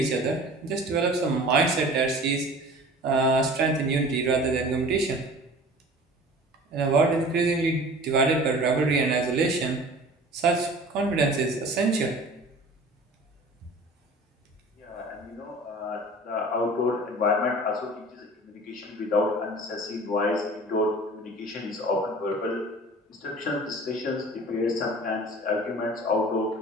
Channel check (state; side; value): normal; both; correlation 0.43